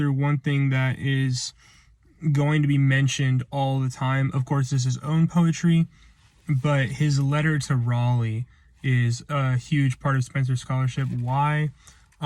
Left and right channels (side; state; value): both; identical; correlation 1.00